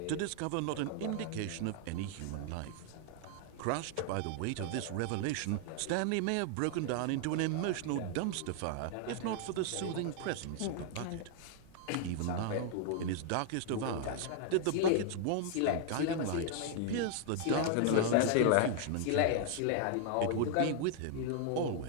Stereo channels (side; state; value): both; different; correlation 0.00